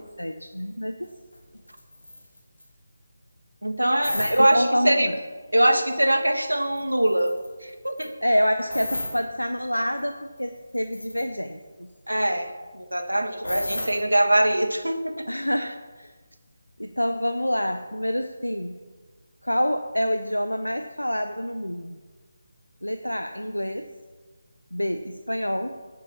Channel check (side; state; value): both; inverted; correlation -0.98